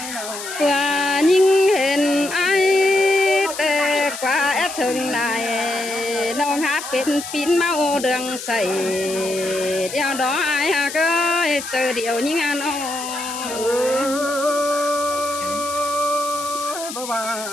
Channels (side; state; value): left; noise; hiss, 9 dB below the sound